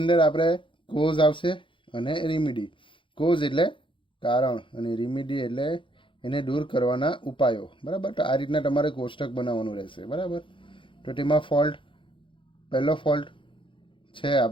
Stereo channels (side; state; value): right; late; 0.25 ms